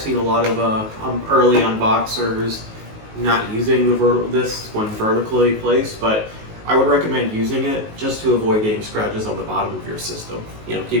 seen a lot of early unboxers not using this when vertically placed, but I would recommend using it just to avoid getting scratches on the bottom of your system.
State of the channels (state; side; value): late; left; 19 ms